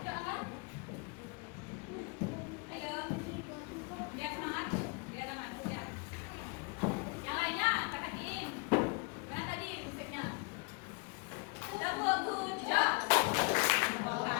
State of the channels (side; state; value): right; quieter; 29.7 dB